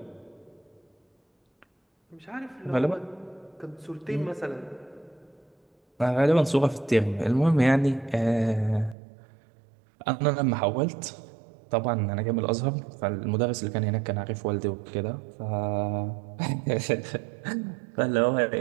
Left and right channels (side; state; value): left; drops out; at 9.0 s